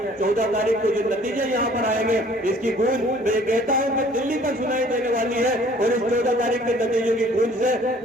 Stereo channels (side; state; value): both; normal; correlation 0.55